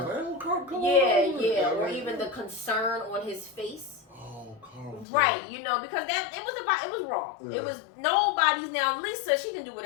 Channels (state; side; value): drops out; right; at 5.1 s